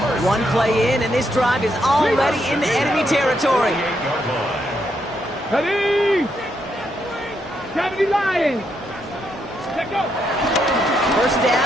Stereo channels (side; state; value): both; normal; correlation 0.78